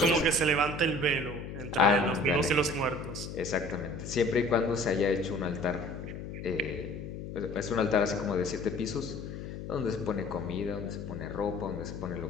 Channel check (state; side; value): noise; left; hum, 8 dB below the sound